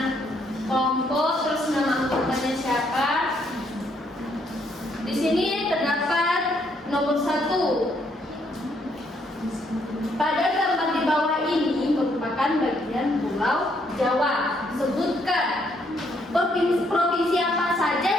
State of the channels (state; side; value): normal; both; correlation 0.71